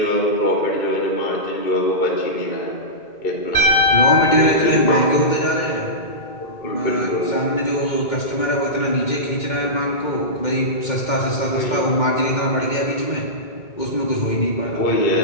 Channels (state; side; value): late; right; 2.1 ms